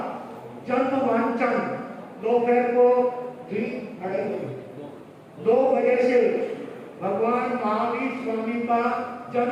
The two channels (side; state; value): both; identical; correlation 1.00